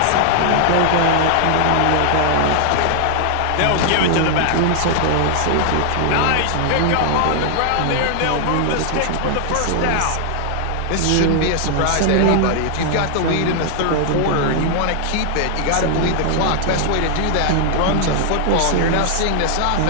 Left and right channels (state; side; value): different; both; correlation 0.00